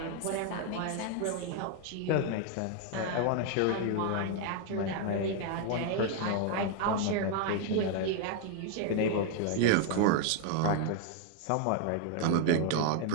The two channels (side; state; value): both; different; correlation 0.00